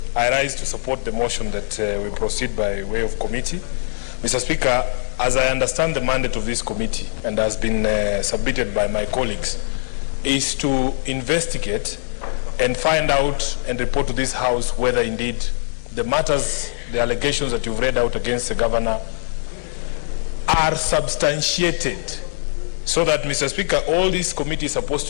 I rise to support the motion that we proceed by way of committee. Mr. Speaker, as I understand the mandate of this committee and has been submitted by my colleagues, is to investigate and find out and report to this House whether indeed the matters, the allegations that you've read out against the governor are substantiated. So that, Mr. Speaker, all this committee is supposed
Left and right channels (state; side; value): silent; right; digital silence